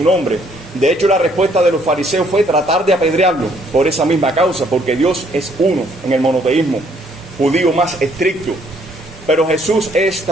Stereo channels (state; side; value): normal; both; correlation 0.66